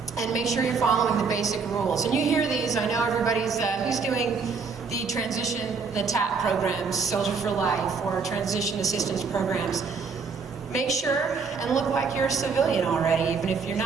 And make sure you're following the basic rules. And you hear these, I know everybody's, who's doing the transition, the TAP programs, Soldier for Life, or transition assistance programs. Make sure and look like you're a civilian already, even if you're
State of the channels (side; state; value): left; quieter; 5.1 dB